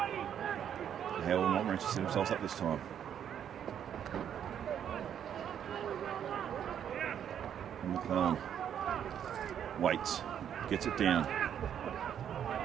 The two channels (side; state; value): left; quieter; 9.2 dB